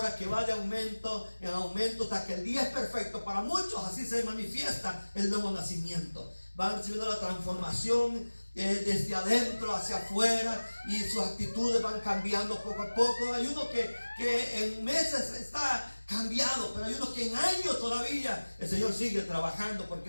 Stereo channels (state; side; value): inverted; both; correlation -1.00